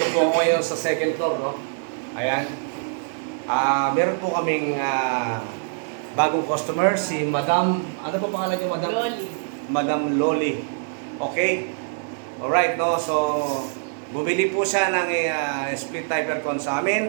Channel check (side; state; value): left; silent; digital silence